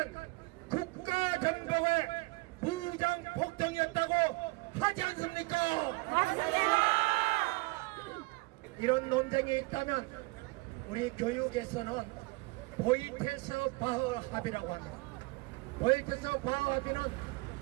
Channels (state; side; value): quieter; left; 25.1 dB